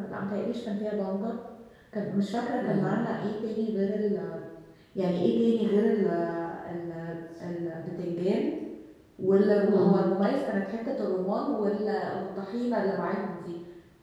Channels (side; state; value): both; identical; correlation 1.00